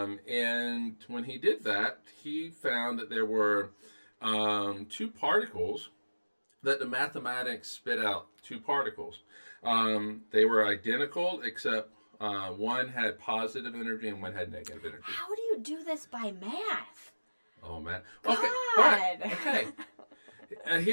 when he did that, he found that there were two particles that the mathematics spit out, two particles. They were identical, except one had positive energy and one had negative energy. How do you do this by math? Oh, man. God. Okay, but, okay.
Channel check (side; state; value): both; inverted; correlation -1.00